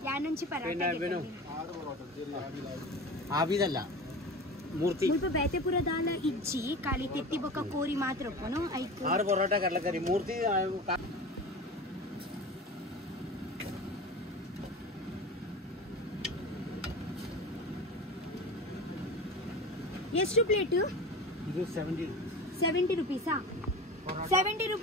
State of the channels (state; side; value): normal; both; correlation 0.32